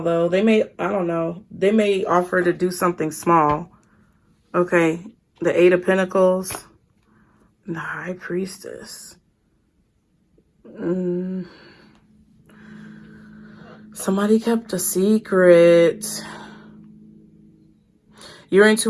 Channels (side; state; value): both; identical; correlation 1.00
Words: though. They may, I don't know. They may offer to do something small. Okay. The Eight of Pentacles. The High Priestess. Somebody kept a secret. Your